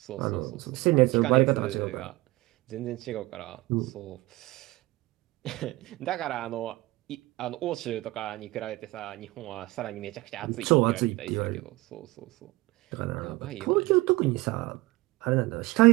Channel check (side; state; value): left; quieter; 20.7 dB